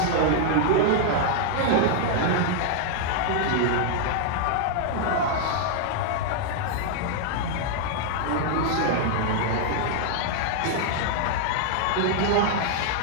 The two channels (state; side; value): different; both; correlation 0.00